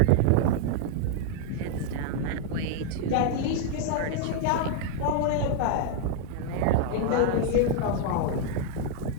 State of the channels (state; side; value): different; both; correlation 0.00